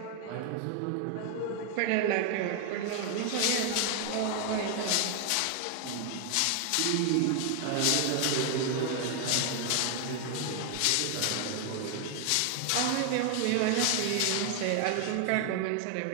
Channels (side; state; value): both; different; correlation 0.00